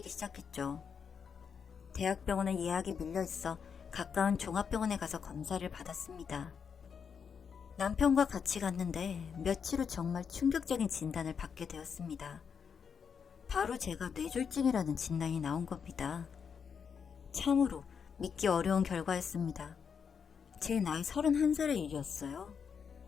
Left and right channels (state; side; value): quieter; right; 6.7 dB